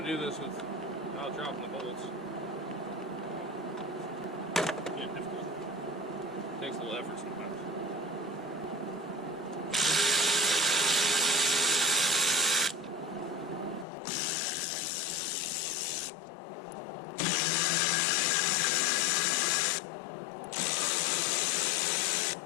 do this without dropping the bolts. Yeah, difficult. Takes a little effort sometimes.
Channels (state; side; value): drops out; right; at 13.9 s